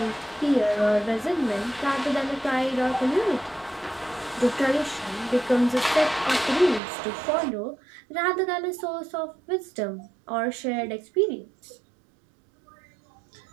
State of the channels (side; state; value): left; drops out; at 6.8 s